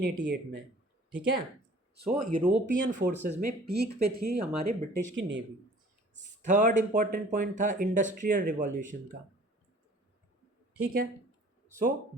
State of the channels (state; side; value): normal; both; correlation 0.50